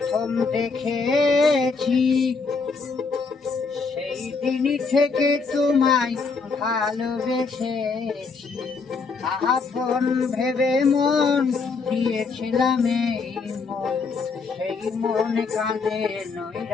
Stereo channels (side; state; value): right; quieter; 4.6 dB